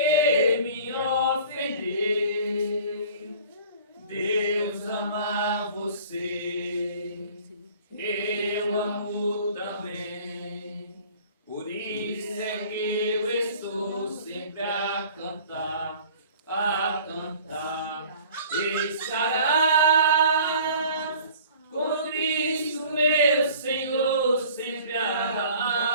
me ofendeu. Deus ama você, eu amo também. Por isso é que eu estou sempre a cantar, a cantar. Estarás com Cristo, meu Senhor, sempre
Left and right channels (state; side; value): inverted; both; correlation -0.48